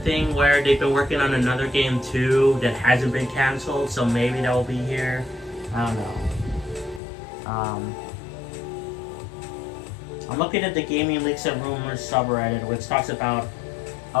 where they've been working on another game too that hasn't been cancelled, so maybe that will be here. I don't know. I'm looking at the Gaming Leaks and Rumors subreddit, which talks about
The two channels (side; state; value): right; drops out; at 7.0 s